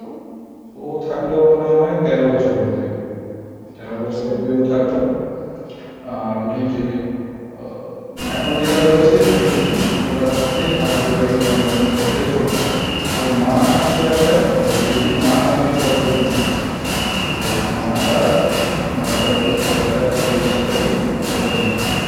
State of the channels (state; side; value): identical; both; correlation 1.00